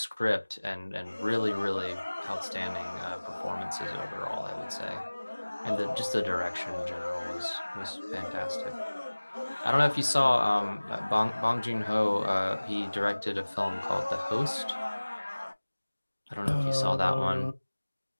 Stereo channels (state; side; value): inverted; both; correlation -1.00